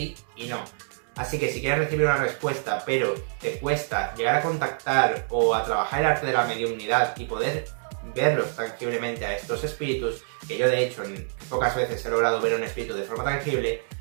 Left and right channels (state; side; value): silent; left; digital silence